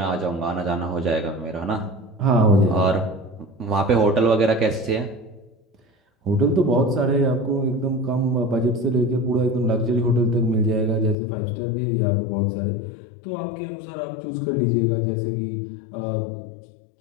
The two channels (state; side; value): drops out; right; at 11.2 s